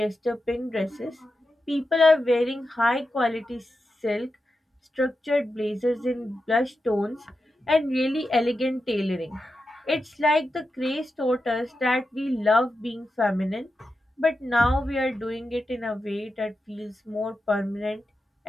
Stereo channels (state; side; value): normal; both; correlation 0.89